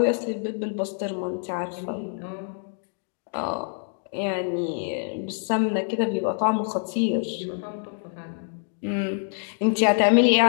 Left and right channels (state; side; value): silent; right; 61 dB below the other